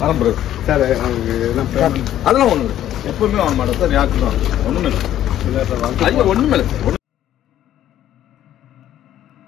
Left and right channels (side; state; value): right; quieter; 12.0 dB